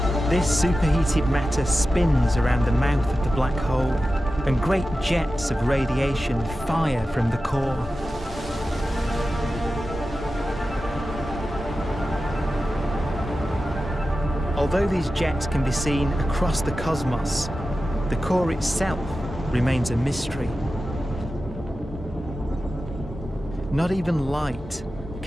This superheated matter spins around the mouth of the black hole, and great jets of radiation fire from the core. Although these jets can be seen across the cosmos, the core itself remains a mystery. Not even light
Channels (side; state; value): both; normal; correlation 0.93